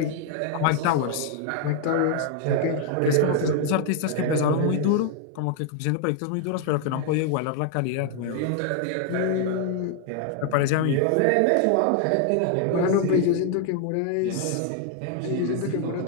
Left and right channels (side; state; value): both; different; correlation 0.00